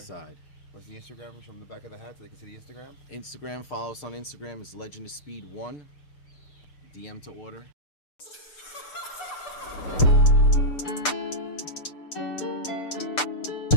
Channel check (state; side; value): late; right; 6.7 ms